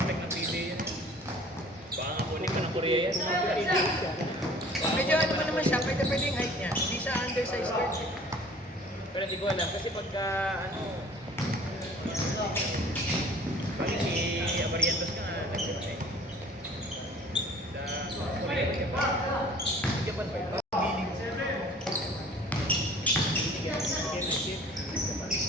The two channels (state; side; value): normal; both; correlation 0.49